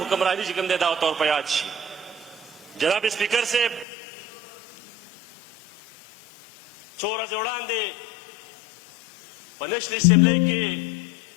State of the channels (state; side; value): drops out; right; at 3.9 s